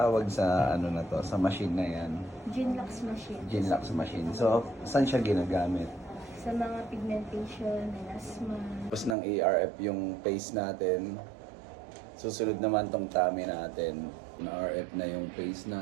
sa ano na to, sa machine na yan? Genlux machine. Genlux machine. So saan siya ginagamit? Sa mga pigmentation, melasma. Tapos ng ARF yung face natin. Susunod naman tong tummy natin. Na RF na yung face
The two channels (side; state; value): left; drops out; at 9.2 s